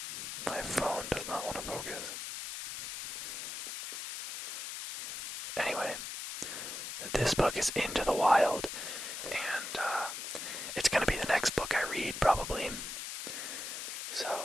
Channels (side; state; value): left; noise; hiss, 6 dB below the sound